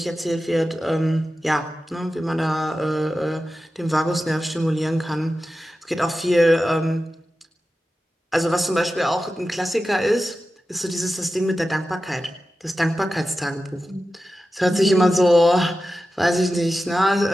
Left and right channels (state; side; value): normal; both; correlation 0.93